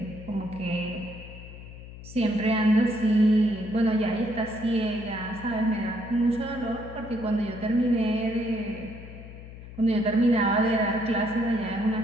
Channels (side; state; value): left; noise; hum, 15 dB below the sound